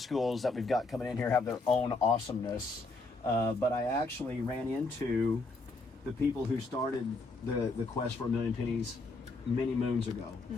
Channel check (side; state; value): right; quieter; 3.4 dB